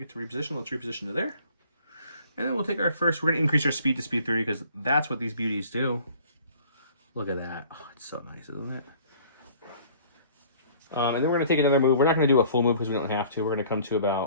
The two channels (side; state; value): both; inverted; correlation -0.53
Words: to reposition, let's reposition to there. And then we'll take our first. We're going to increase our speed to speed 30 because that's what these beauties do. Look at that. Oh, it's so nice, isn't it? And then we're going to take another move. We're not going to do a full move because we don't have to. We're going to come to